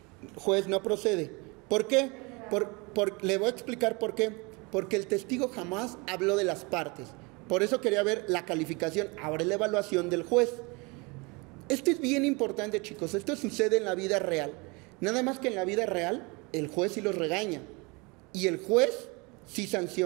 Juez, no procede. ¿Por qué? Le voy a explicar por qué. Porque el testigo jamás habló de las partes. Por eso quería ver la calificación, ahora la evaluación del juez. Esto es bien importante, chicos. Esto sucede en la vida real. Nada más que en la vida real, el juez sí los regaña. y el juez sí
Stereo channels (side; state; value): left; quieter; 27.9 dB